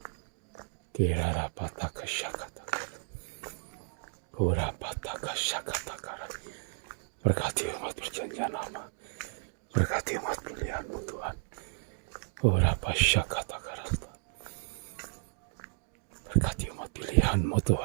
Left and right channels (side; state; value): left; silent; digital silence